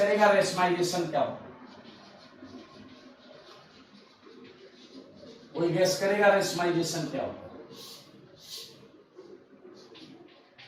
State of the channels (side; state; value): both; identical; correlation 1.00